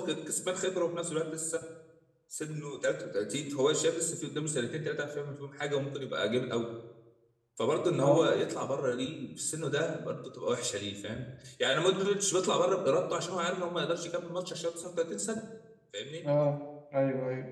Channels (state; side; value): identical; both; correlation 1.00